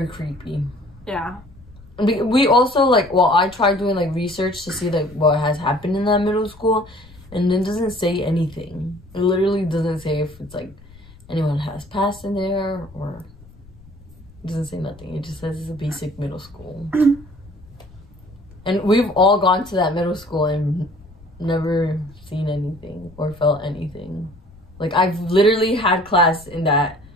creepy. Yeah. We also like, well, I tried doing like research to see like what has happened in that middle school, And it doesn't say anything. It literally doesn't say if it's like anyone has passed in there or it doesn't say nothing. It just says it's a basic middle school. And we've all gone to that middle school and never seen anything or felt anything. Like, I've literally had class in that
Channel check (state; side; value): noise; left; rumble, 23 dB below the sound